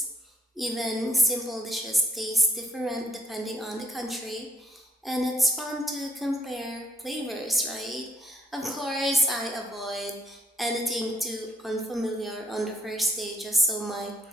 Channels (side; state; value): both; normal; correlation 0.68